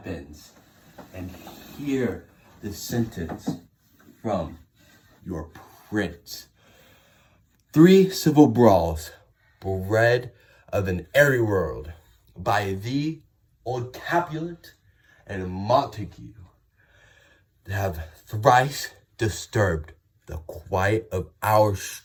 and hear the sentence from your prince. 3 civil brawls, bred of an airy world, by thee, old Capulet and Montague, have thrice disturbed the quiet of our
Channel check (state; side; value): identical; both; correlation 1.00